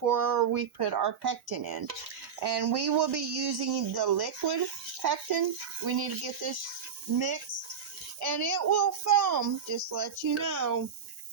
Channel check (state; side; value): quieter; left; 7.0 dB